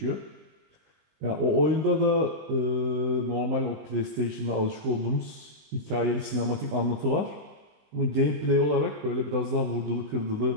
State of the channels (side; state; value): left; late; 19 ms